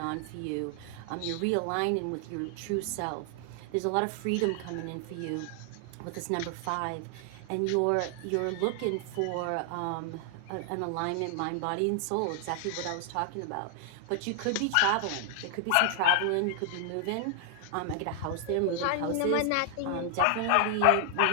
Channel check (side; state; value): both; different; correlation 0.00